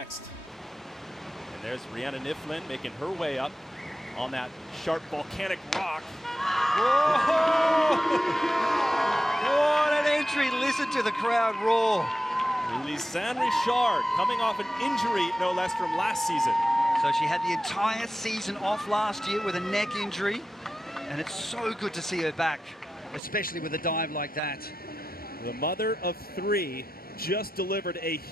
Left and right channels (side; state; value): both; normal; correlation 0.91